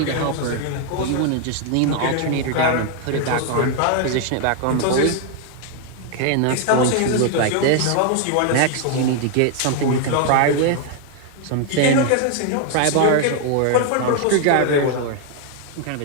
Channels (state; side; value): different; both; correlation 0.00